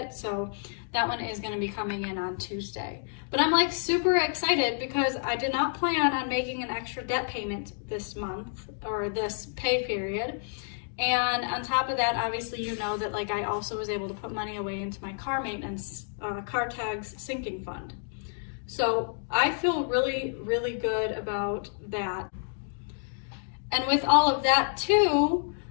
so that one is going to be coming in on Tuesday. But I'm like super excited because I did not plan on making an extra debt payment this month or this pay period. And on top of that, obviously you know that like I also was able to put money away into my car maintenance, car tags sinking fund. So I feel really, really good about that. And with all of that too,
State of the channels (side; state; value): right; silent; 58 dB below the other